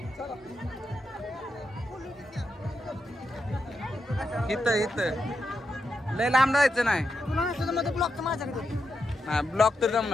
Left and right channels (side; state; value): both; normal; correlation 0.86